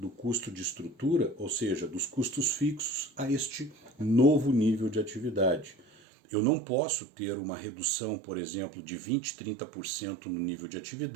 custo de estrutura, ou seja, dos custos fixos, a este novo nível de atividade. Eu não posso ter uma redução, por exemplo, de 20%, 30% no nível de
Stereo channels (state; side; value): drops out; left; at 5.9 s